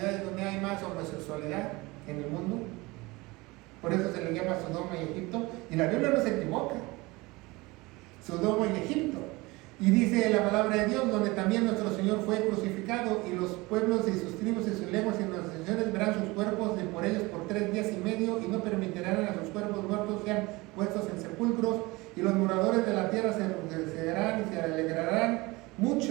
donde hay más homosexualidad en el mundo? Por eso se le llama Sodoma y Egipto. Y la Biblia no se equivoca. Sodoma y Egipto. Y dice la palabra de Dios, donde también nuestro Señor fue crucificado, y los pueblos y sus tribus y sus lenguas y las naciones verán sus cuerpos de por ellos por 3 días y medio, y no permitirán a sus cuerpos muertos sean puestos en sepulcros, y los moradores de la tierra se regocijarán y se alegrarán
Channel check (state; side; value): quieter; left; 22.8 dB